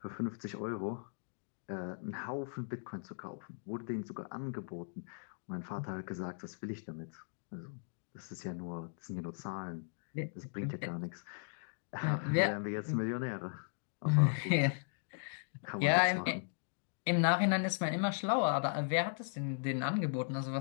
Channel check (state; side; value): silent; right; digital silence